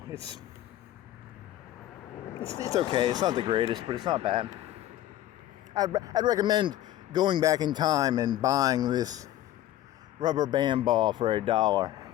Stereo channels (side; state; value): right; quieter; 13.5 dB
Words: It's okay. It's not the greatest, but it's not bad. I'd recommend going back in time and buying this rubber band ball for $1